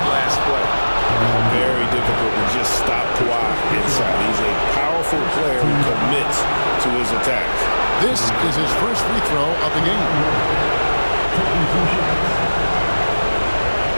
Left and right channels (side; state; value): both; inverted; correlation -1.00